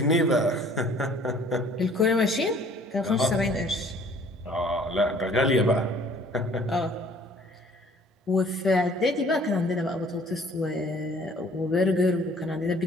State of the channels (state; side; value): normal; both; correlation 0.55